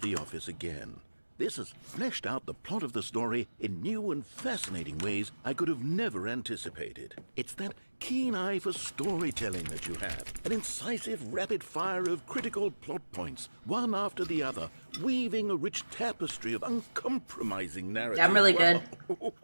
the office again. This has fleshed out the plot of the story in new and fascinating ways I could have never anticipated. It's that keen eye for storytelling that you have. An incisive rapid fire of critical plot points, one after the other, weaving a rich tapestry of uncompromising narrative. Yeah, I'm really good.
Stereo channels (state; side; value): inverted; both; correlation -1.00